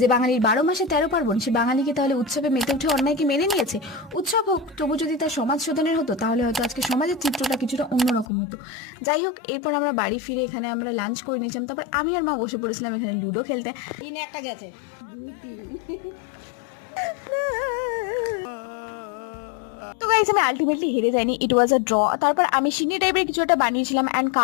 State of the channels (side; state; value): right; drops out; at 8.2 s